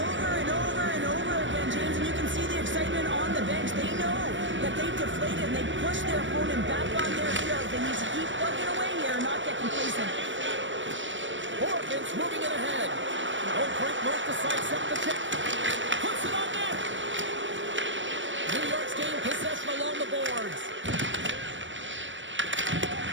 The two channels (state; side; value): late; left; 0.55 ms